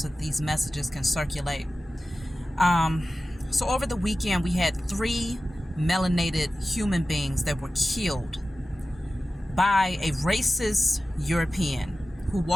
that these messages can circulate. So over the weekend, we had 3 melanated human beings that were killed by a racist European who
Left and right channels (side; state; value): both; normal; correlation 0.95